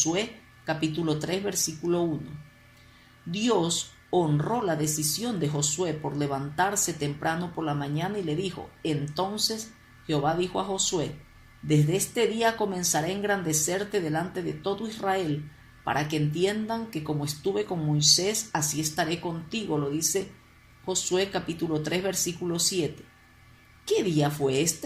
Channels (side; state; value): both; identical; correlation 1.00